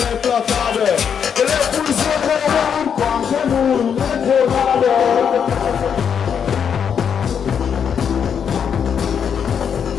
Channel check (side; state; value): right; quieter; 7.5 dB